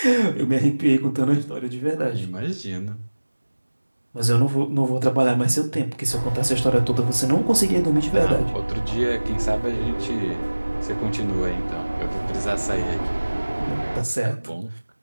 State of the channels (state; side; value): inverted; both; correlation -1.00